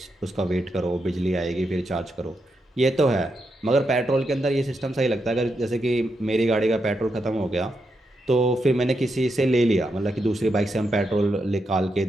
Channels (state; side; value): normal; both; correlation 0.84